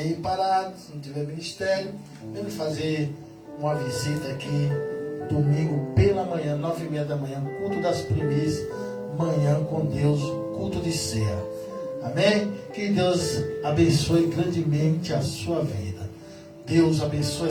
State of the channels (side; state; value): both; identical; correlation 1.00